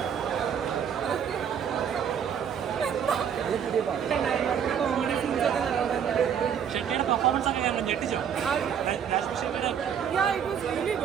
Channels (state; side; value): quieter; left; 8.2 dB